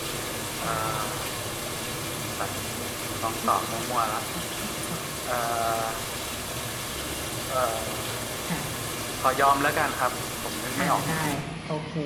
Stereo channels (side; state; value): both; identical; correlation 1.00